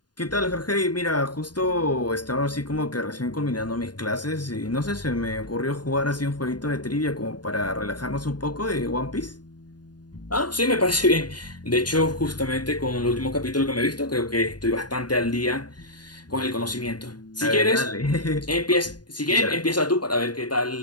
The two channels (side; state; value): right; late; 0.70 ms